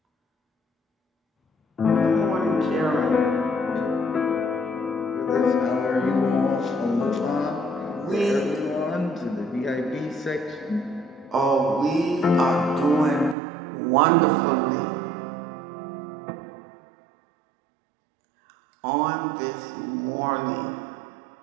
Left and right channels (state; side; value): drops out; left; at 13.4 s